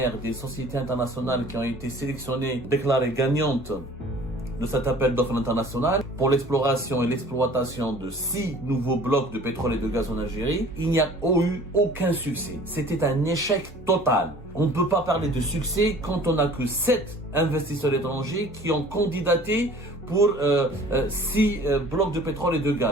des sociétés internationales qui ont été sélectionnées, déclarées gagnantes de cet appel d'offres international pour l'exploration et l'exploitation de 6 nouveaux blocs de pétrole et de gaz en Algérie, il n'y a eu aucun succès. C'était un échec total. On ne peut pas parler de succès quand on n'a que 7 investisseurs étrangers qui ont candidaté pour 6 blocs de pétrole et de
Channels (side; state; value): both; normal; correlation 0.48